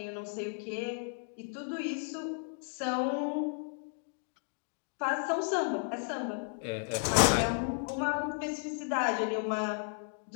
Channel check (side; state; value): right; silent; 55 dB below the other